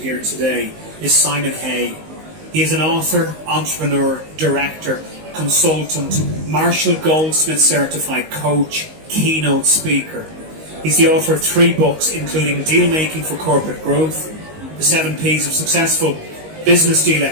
here today is Simon Hay. He is an author, entrepreneur, director, consultant, Marshall Goldsmith certified coach, keynote speaker. He's the author of 3 books, including Deal Making for Corporate Growth, The 7 Ps of Successful Business Deal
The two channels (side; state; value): left; late; 19 ms